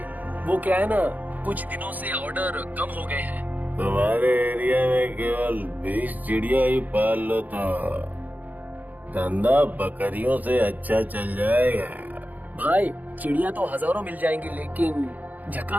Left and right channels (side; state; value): left; late; 0.081 ms